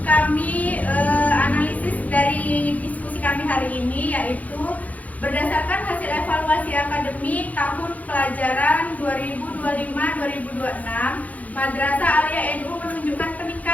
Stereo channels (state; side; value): late; right; 0.075 ms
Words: kami analisis dari diskusi kami hari ini, yaitu berdasarkan hasil evaluasi akademik tahun pelajaran 2025-2026, Madrasah Aliyah NU menunjukkan